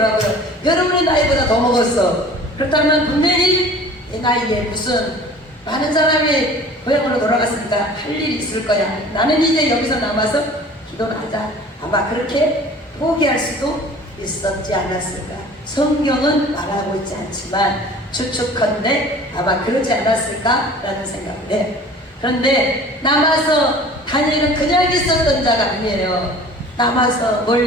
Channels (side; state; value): both; normal; correlation 0.45